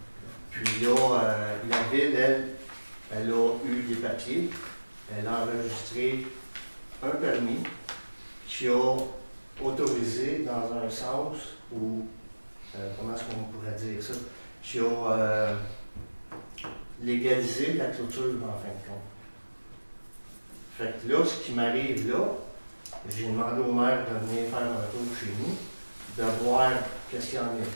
Puis là, la ville, elle a eu des papiers elle a enregistré un permis qui a autorisé dans un sens où, comment est-ce qu'on pourrait dire ça, qui a légalisé la clôture en fin de compte. Fait que là, ce qui m'arrive là, j'ai demandé au maire de venir faire un tour chez nous, de voir qu'est-ce qu'il en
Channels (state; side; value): inverted; both; correlation -1.00